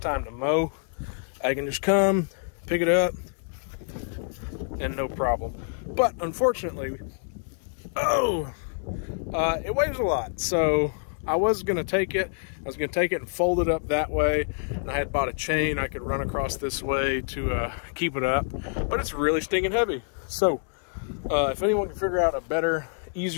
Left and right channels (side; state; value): right; silent; digital silence